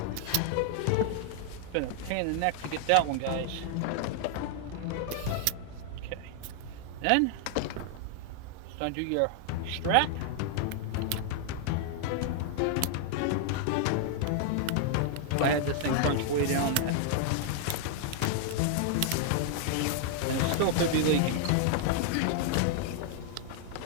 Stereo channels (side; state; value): both; different; correlation 0.00